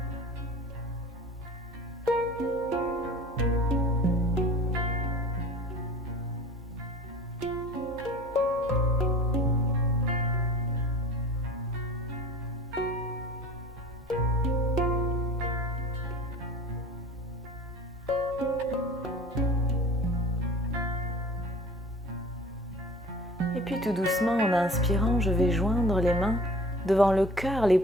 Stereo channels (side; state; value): both; normal; correlation 0.43